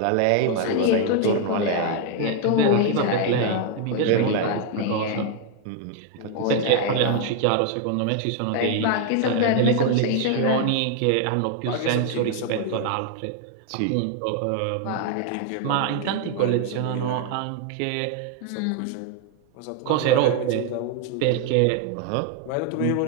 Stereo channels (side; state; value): both; different; correlation 0.00